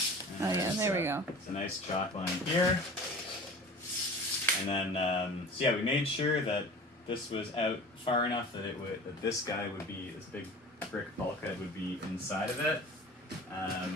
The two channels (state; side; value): normal; both; correlation 0.40